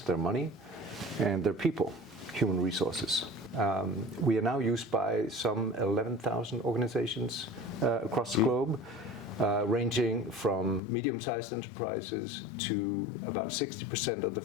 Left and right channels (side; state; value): right; drops out; at 10.8 s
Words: money, and their people, human resources. We are now used by some 11,000 organizations across the globe, ranging from medium-sized enterprises to about 60% of the